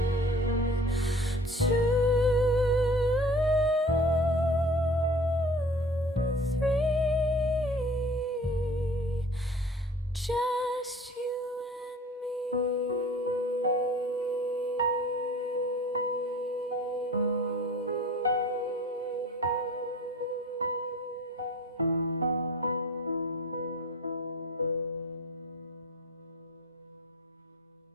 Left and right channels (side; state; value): both; normal; correlation 0.45